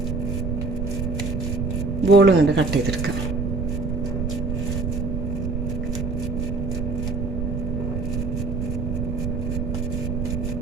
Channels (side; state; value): right; noise; rumble, 1 dB below the sound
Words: ബോളും കൊണ്ട് കട്ട് ചെയ്തെടുക്കുക.